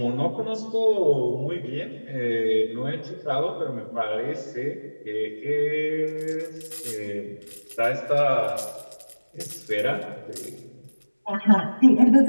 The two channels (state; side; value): inverted; both; correlation -1.00